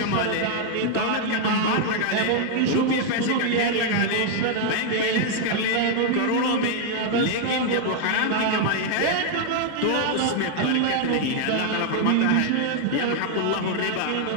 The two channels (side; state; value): both; different; correlation 0.00